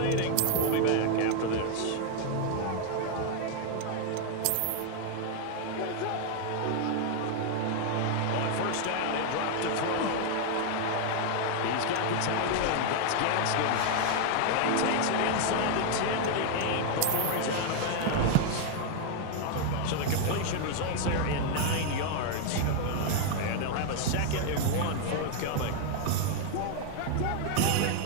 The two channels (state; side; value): different; both; correlation 0.00